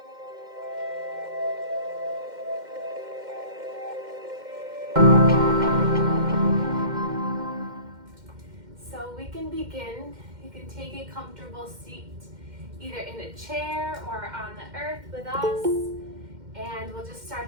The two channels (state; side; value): late; left; 2.1 ms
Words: So we can begin. You can take a comfortable seat either in a chair or on the earth with us, and we'll just start